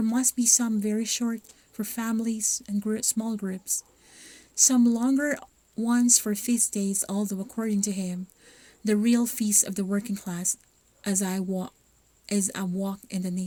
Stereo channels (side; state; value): both; identical; correlation 1.00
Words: must be some very short for families and small groups, some longer ones for feast days, although according to him, the real feast of the working class is a walk in the